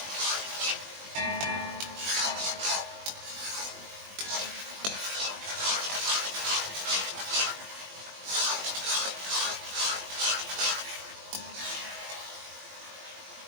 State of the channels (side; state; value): left; late; 20 ms